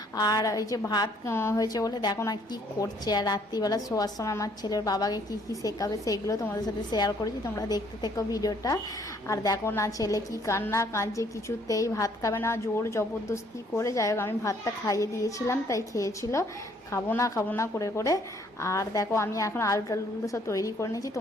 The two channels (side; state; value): both; normal; correlation 0.64